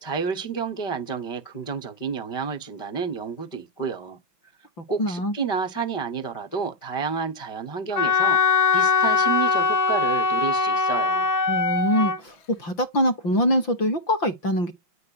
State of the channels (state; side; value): late; right; 5.8 ms